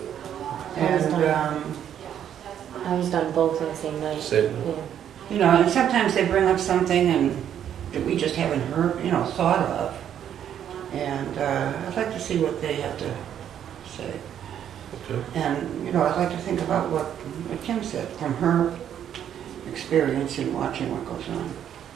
And, I was done both on the same night. Same. Yeah. you know, and sometimes they bring up something and that we just haven't heard, thought of. And I'd like to see what they have to say. Okay. And, I'd like to think about what Kim said from her experience in watching what goes on.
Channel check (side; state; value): left; quieter; 9.7 dB